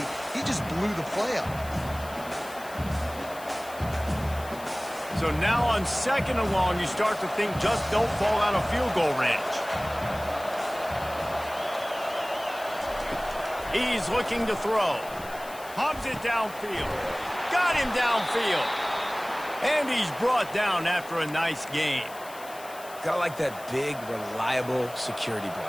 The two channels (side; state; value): left; noise; hiss, 18 dB below the sound